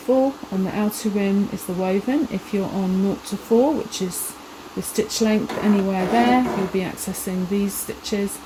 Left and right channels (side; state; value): both; identical; correlation 1.00